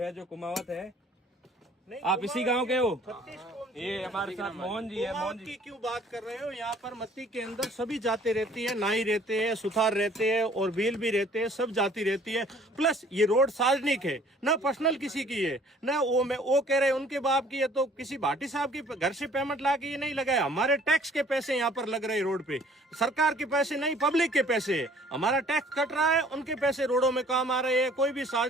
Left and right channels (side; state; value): both; normal; correlation 0.55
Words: जो कुमावत है। आप इसी गांव के हो? ये हमारे साथ मोहन जी है। मोहन जी क्यों बात कर रहे हो? यहाँ पर मत्ती के अंदर सभी जाति रहती है, नाई रहते हैं, सुथार रहते हैं और भील भी रहते हैं, सब जाति रहती है। प्लस ये रोड सार्वजनिक है, ना पर्सनल किसी की है, ना वो कह रहे हैं उनके बाप की है। तो किसी भाटी साहब की घर से पेमेंट ला के ये नहीं लगाया। हमारे टैक्स के पैसे यहाँ पर लग रहे हैं रोड पे, सरकार के पैसे नहीं, पब्लिक के पैसे है। हमारा टैक्स कट रहा है, उनके पैसे रोडों में काम आ रहे हैं। कोई भी